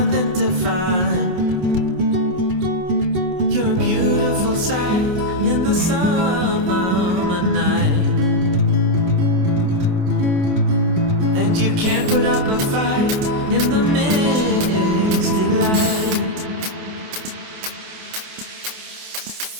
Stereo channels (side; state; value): left; late; 28 ms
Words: to find, you're a beautiful sight in the summer night. And you can't put up a fight in the misty light.